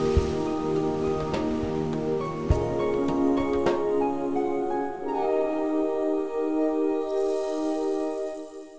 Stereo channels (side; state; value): both; identical; correlation 1.00